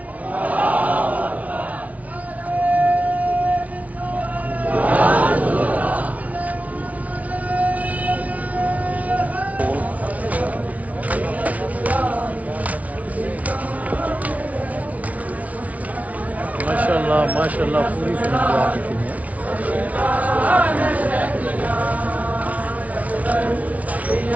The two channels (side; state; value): left; late; 0.069 ms